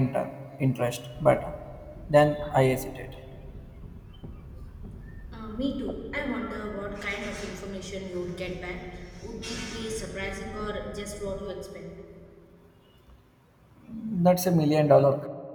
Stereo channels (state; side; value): identical; both; correlation 1.00